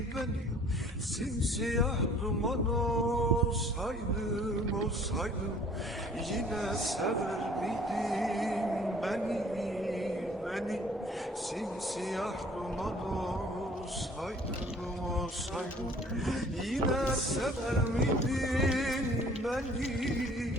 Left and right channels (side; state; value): both; normal; correlation 0.54